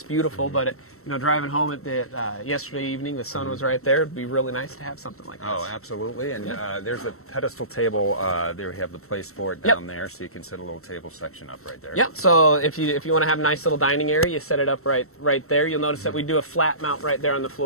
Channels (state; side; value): late; right; 0.63 ms